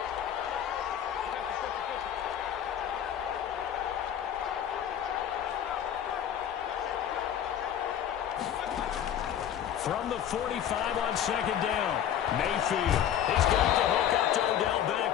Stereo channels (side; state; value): right; quieter; 9.9 dB